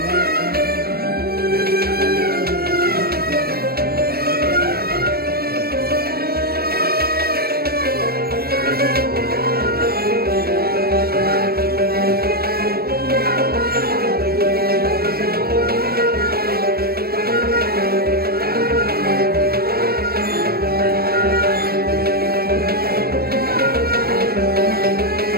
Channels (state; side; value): late; left; 0.45 ms